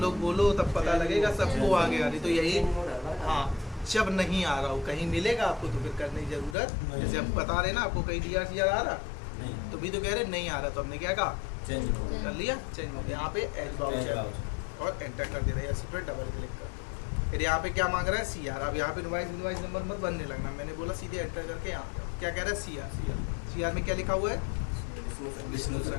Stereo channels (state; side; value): drops out; right; at 6.6 s